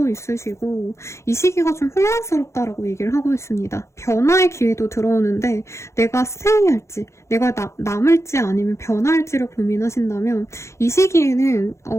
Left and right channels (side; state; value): right; late; 0.14 ms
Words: 있으시고 이 시기가 좀 혼란스럽다라고 얘기를 하고 있습니다. 변화의 기회도 들어오는데 내가 스테이할지 내가 남을지 아니면 변화할지를 고민하신다면 이 시기에는